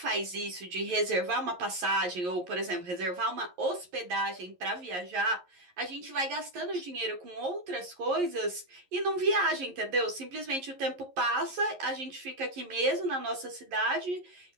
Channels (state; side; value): late; left; 11 ms